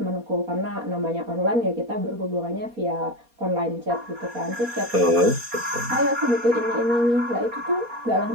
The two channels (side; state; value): left; late; 4.2 ms